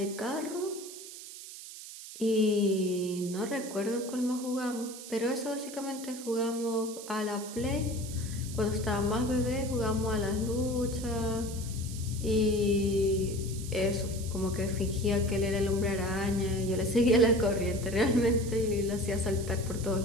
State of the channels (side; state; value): right; noise; hiss, 13 dB below the sound